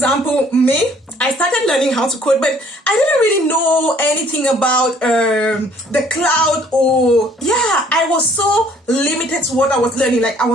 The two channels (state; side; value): normal; both; correlation 0.59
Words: me, I started learning how to code, but I didn't really know anything about the cloud, or I was so limited to what I was learning. Like I